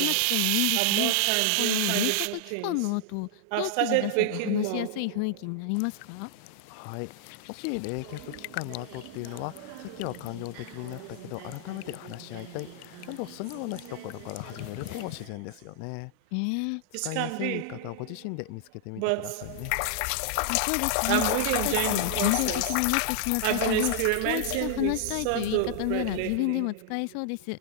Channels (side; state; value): both; different; correlation -0.01